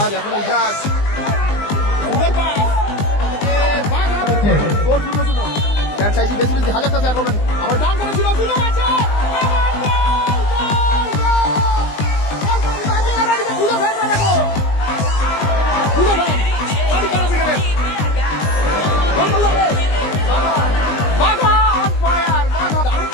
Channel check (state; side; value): late; right; 20 ms